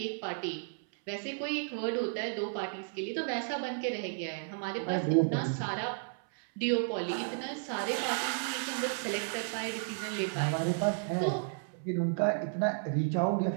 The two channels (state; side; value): silent; left; 56 dB below the other